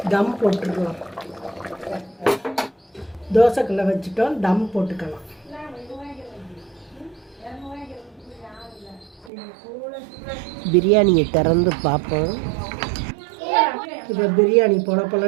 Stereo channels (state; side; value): drops out; left; at 9.3 s